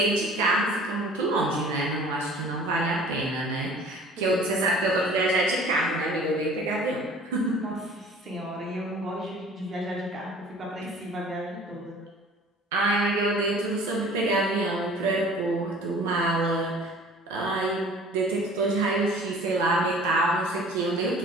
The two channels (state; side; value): normal; both; correlation 0.48